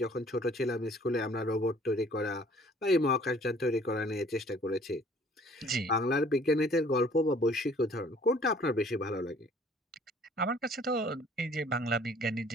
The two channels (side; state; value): both; normal; correlation 0.55